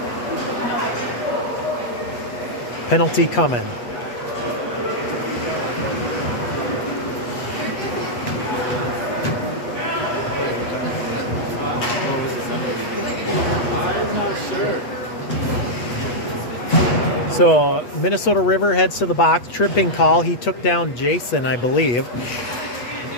Penalty coming. So Minnesota River heads to the box, tripping call. He took down Jason, I believe.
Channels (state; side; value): late; right; 8.2 ms